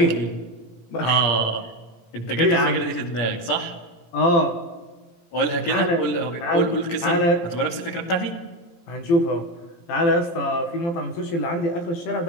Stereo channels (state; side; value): late; right; 17 ms